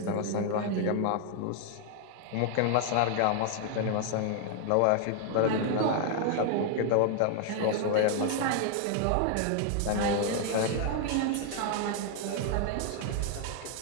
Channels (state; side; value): different; both; correlation 0.00